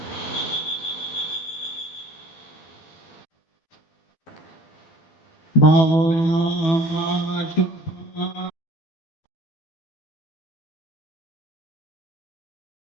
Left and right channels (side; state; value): right; late; 12 ms